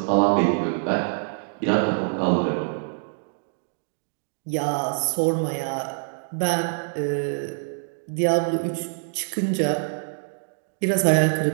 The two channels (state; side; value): silent; left; digital silence